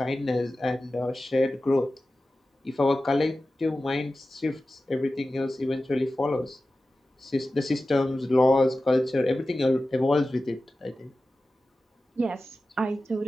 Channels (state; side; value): normal; both; correlation 0.95